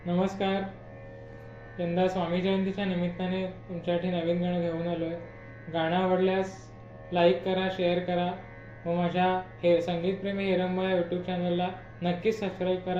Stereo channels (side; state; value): both; identical; correlation 1.00